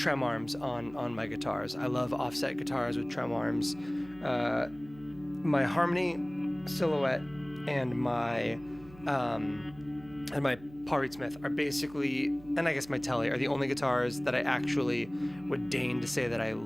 arms on my guitars. I love offset guitars with trem arms. My Harmony Silhouette and my Paul Reed Smith are basically, and I guess my Telly, are the only guitars that I actually would deign to say that I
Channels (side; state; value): right; noise; hum, 21 dB below the sound